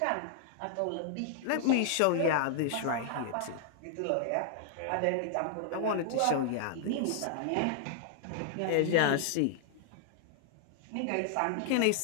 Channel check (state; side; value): different; both; correlation 0.00